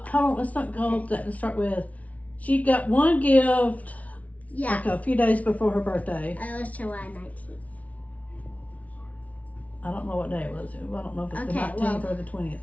hold on. Let's not go with that. Let's start with she got one gift Yeah. like a few days before her birthday. It was July 19th. I don't know what day it was. I don't know if it's the Okay, 19th well, or the 20th.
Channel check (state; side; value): late; right; 0.069 ms